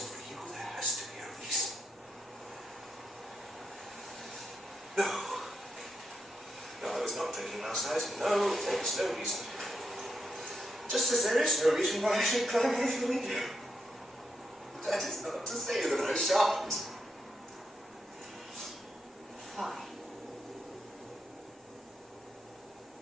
for you, there has to be a reason. No. No, I was not drinking last night. No, there is no reason. Just as there is no reason why I should climb out of the window. That is not to say that I shan't. Fine.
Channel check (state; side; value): normal; both; correlation 0.83